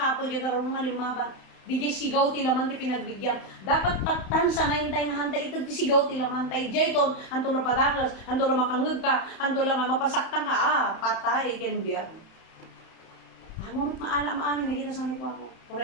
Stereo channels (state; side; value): late; right; 31 ms